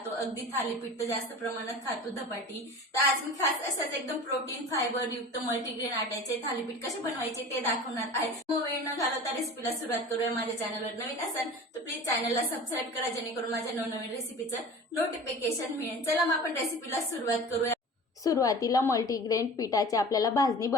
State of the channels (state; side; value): normal; both; correlation 0.37